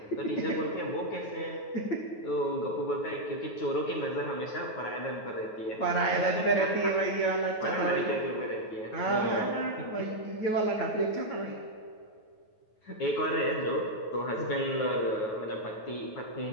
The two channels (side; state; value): right; late; 9.3 ms